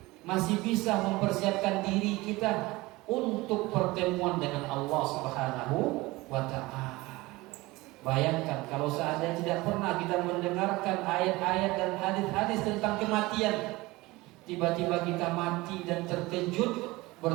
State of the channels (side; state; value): left; quieter; 21.0 dB